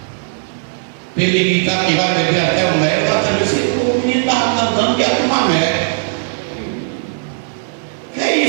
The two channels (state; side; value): silent; left; digital silence